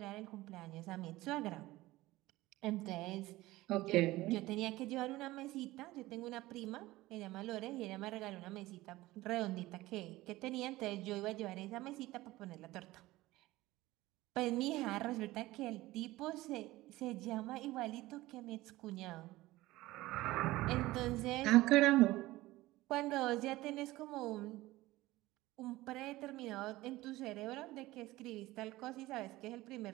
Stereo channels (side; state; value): left; quieter; 18.1 dB